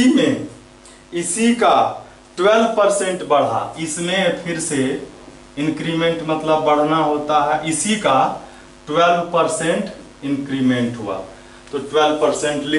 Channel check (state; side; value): identical; both; correlation 1.00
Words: इसी का 12% बढ़ा, इसमें फिर से इंक्रीमेंट मतलब बढ़ना होता है, इसी का 12% इंक्रीमेंट हुआ तो 12%